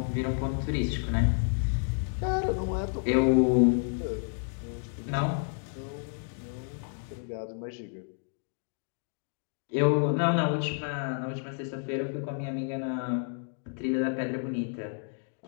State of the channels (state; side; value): silent; right; 58 dB below the other